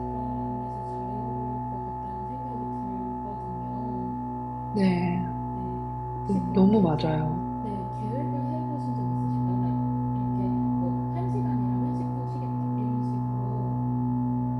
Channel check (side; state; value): both; identical; correlation 1.00